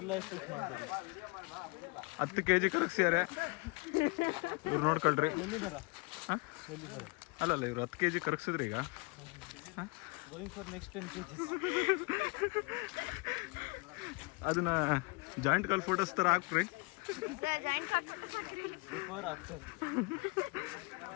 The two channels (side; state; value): right; quieter; 28.7 dB